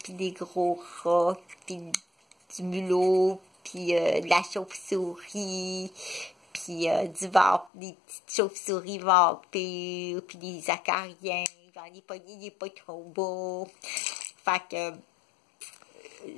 puis des gros rats, puis du mulot, puis de la chauve-souris, puis des petites chauves-souris vampires, puis des acariens. Il est pas trop beau. Fait que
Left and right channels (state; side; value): drops out; right; at 7.7 s